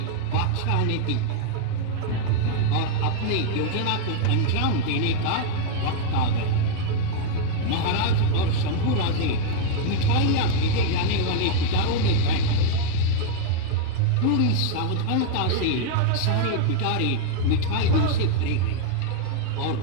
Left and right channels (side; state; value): both; different; correlation 0.00